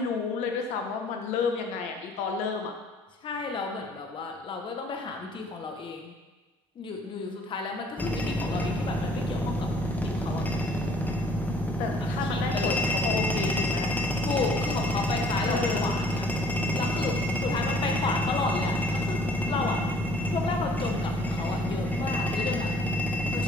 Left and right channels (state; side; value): normal; both; correlation 0.57